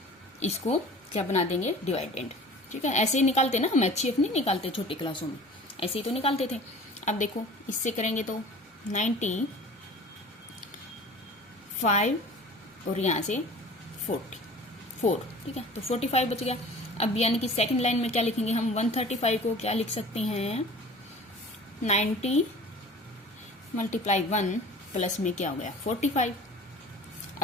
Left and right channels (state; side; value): normal; both; correlation 0.42